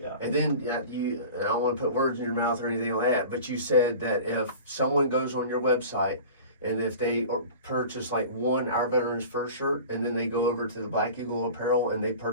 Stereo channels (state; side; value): inverted; both; correlation -0.38